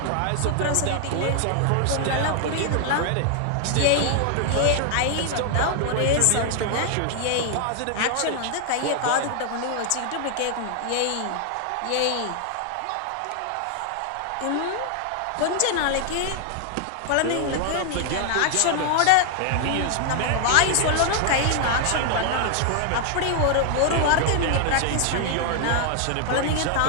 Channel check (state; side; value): different; both; correlation 0.00